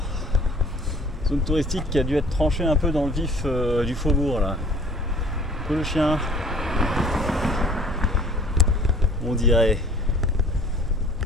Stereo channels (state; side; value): normal; both; correlation 0.52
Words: zone touristique qui a dû être tranchée un peu dans le vif du faubourg là. Un peu le chien, on dirait.